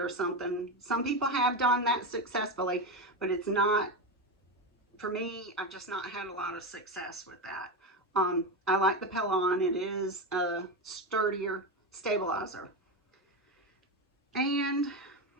or something. Some people have done that successfully, but it's not, for me, I've just not had a lot of success with that. I like the Petalon. It is a sturdier stabilizer. And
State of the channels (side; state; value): both; normal; correlation 0.15